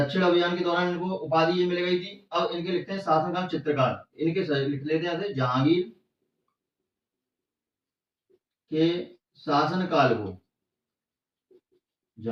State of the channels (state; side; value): identical; both; correlation 1.00